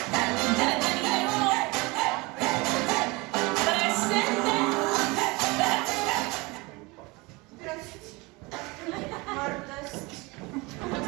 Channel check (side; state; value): left; quieter; 25.1 dB